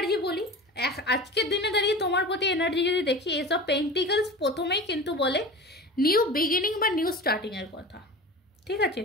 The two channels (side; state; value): both; normal; correlation 0.33